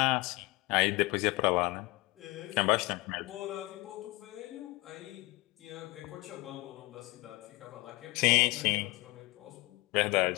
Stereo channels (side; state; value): right; quieter; 23.4 dB